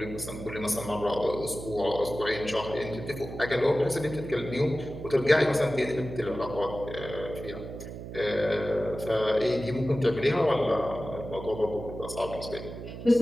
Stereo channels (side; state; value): right; noise; hum, 10 dB below the sound